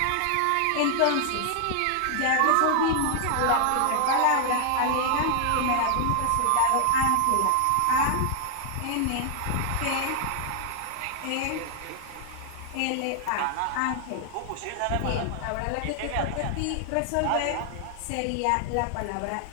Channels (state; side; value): different; both; correlation 0.00